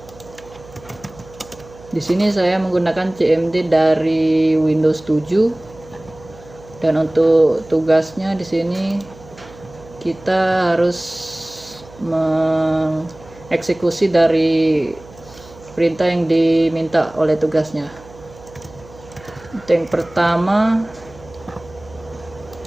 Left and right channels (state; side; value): noise; right; hum, 21 dB below the sound